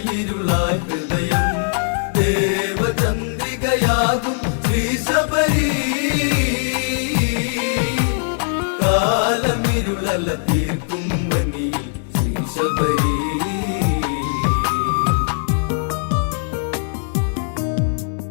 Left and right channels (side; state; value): right; silent; 60 dB below the other